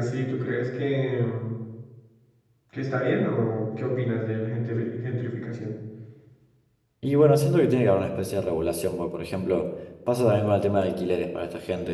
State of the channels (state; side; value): identical; both; correlation 1.00